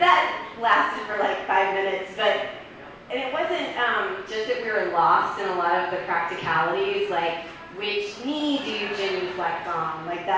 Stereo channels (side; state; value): both; identical; correlation 1.00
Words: that lasted for like 5 minutes, and it wasn't just that we were lost in a lot of the practicalities, like which knee do you genuflect on? Like